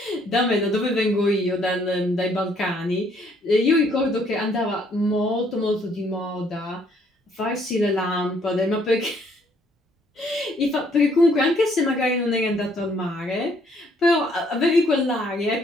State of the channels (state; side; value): normal; both; correlation 0.66